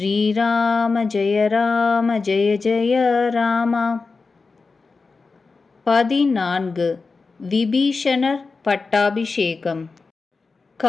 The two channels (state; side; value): quieter; right; 4.2 dB